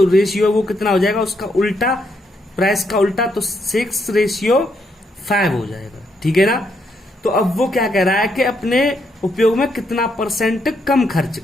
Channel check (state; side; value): normal; both; correlation 0.76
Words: रेशियो है वो कितना हो जाएगा, उसका उल्टा, प्राइस का उल्टा, तो 6/5 हो जाएगा, ठीक है ना। तो अब वो क्या कह रहा है कि अपने उपयोग में कितना % कम खर्च